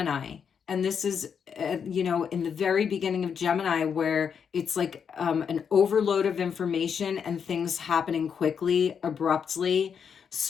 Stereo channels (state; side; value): quieter; right; 7.0 dB